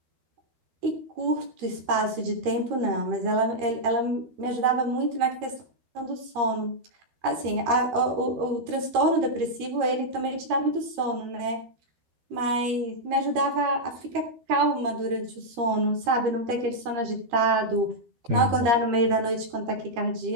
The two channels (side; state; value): left; late; 13 ms